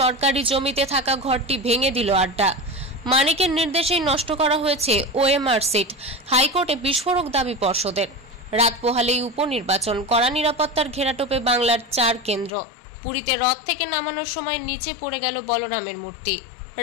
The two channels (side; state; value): right; drops out; at 12.5 s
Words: জমিতে থাকা ঘরটি ভেঙে দিল আড্ডা। মানিকের নির্দেশেই নষ্ট করা হয়েছে ওএমআর সিট, হাইকোর্টে বিস্ফোরক দাবি পর্ষদের। রাত পোহালেই উপনির্বাচন, কড়া নিরাপত্তার ঘেরাটোপে বাংলার 4 কেন্দ্র। পুরীতে রথ থেকে নামানোর সময় নিচে পড়ে গেল বলরামের মূর্তি।